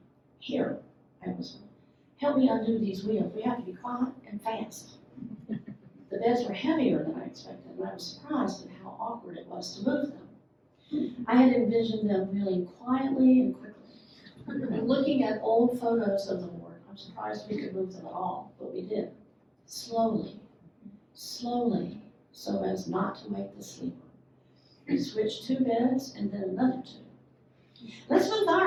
Here, I whispered. Help me undo these wheels. We have to be quiet and fast. The beds were heavier than I expected, and I was surprised at how awkward it was to move them. I had envisioned them wheeling quietly and quickly. Looking at old photos of the ward, I'm surprised we could move them at all, but we did. Slowly, so as not to wake the sleeper. We switched 2 beds and then another 2. Let's move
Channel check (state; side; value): identical; both; correlation 1.00